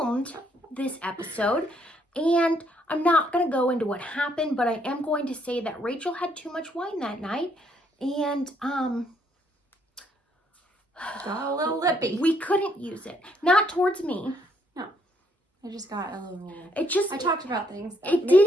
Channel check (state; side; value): normal; both; correlation 0.70